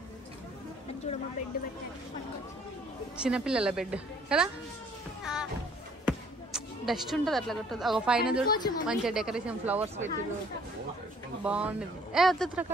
చిన్నపిల్లల బెడ్ కదా. డస్ట్ ఉంటుంది అట్లా కొట్టదు. ఒక పైన చూడు మంచిగా డెకరేషన్ ఫ్లవర్స్ పెట్టిరు, బాగుండేది. వద్దు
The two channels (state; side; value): normal; both; correlation 0.59